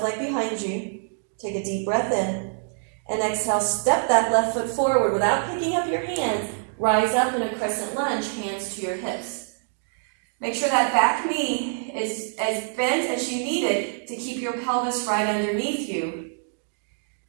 leg behind you. Take a deep breath in. And exhale, step that left foot forward without picking up your hands. Rise up in a crescent lunge, hands to your hips. Make sure that back knee is as bent as you need it to keep your pelvis right underneath you.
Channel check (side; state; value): left; silent; digital silence